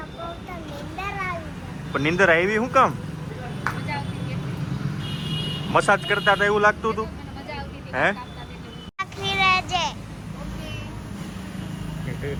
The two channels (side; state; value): both; identical; correlation 1.00